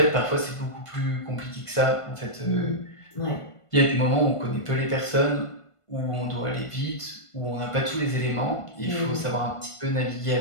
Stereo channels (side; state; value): right; late; 1.5 ms